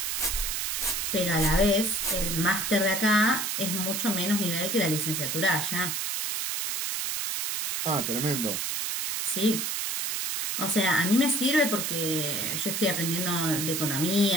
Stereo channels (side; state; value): right; noise; hiss, 1 dB below the sound